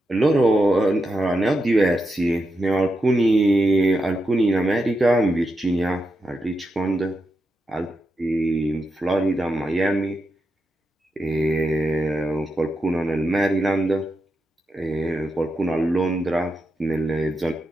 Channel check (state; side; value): normal; both; correlation 0.86